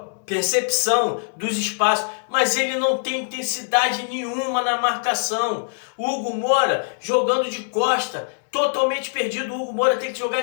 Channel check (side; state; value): right; silent; 64 dB below the other